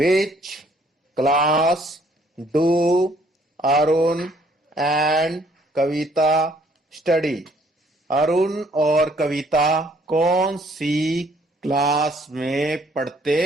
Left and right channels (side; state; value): both; normal; correlation 0.63